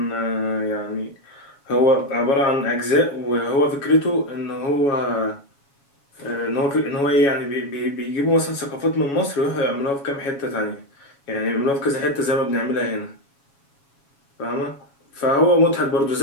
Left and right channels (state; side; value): late; right; 7.2 ms